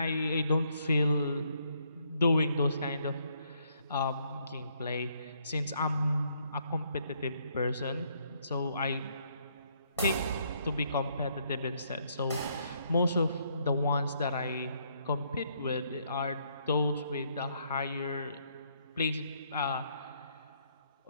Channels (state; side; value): inverted; both; correlation -0.71